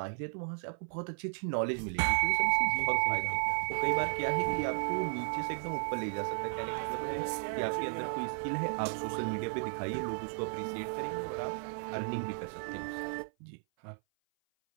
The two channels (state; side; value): silent; left; 55 dB below the other